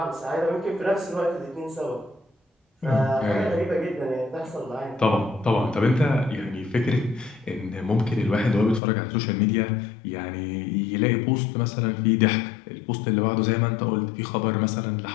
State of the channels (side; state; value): right; drops out; at 8.8 s